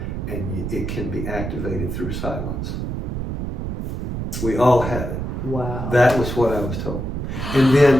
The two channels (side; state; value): right; noise; rumble, 4 dB below the sound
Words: and it can be activated through silence. We all have it. Wow. That was what I was told. And